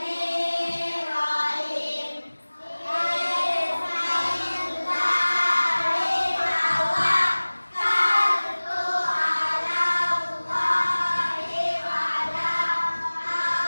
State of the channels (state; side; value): inverted; both; correlation -1.00